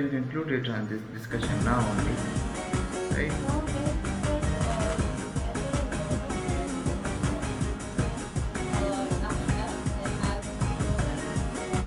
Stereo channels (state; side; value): identical; both; correlation 1.00